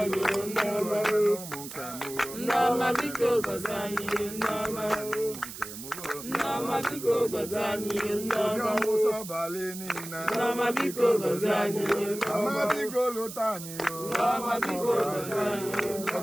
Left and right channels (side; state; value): right; noise; hiss, 11 dB below the sound